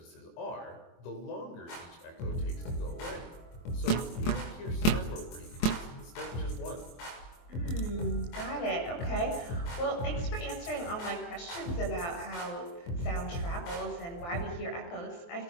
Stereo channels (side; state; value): right; late; 23 ms